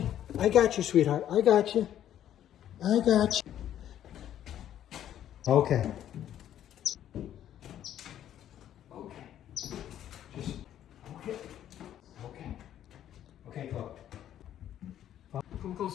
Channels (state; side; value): quieter; right; 11.1 dB